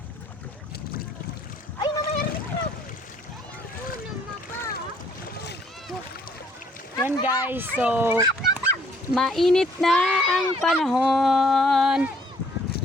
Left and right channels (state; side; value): normal; both; correlation 0.63